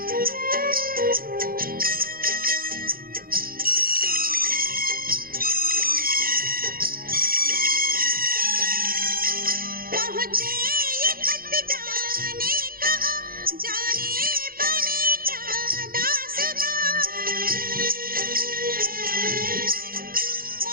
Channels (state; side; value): late; left; 0.42 ms